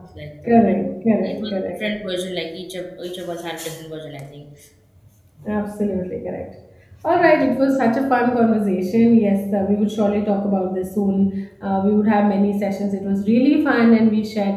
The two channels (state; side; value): identical; both; correlation 1.00